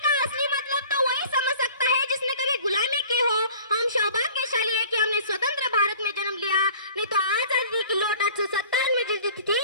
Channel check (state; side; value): inverted; both; correlation -0.47